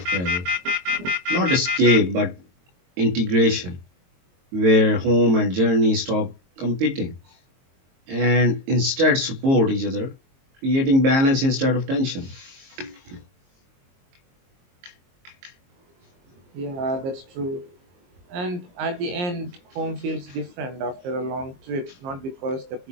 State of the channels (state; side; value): late; left; 22 ms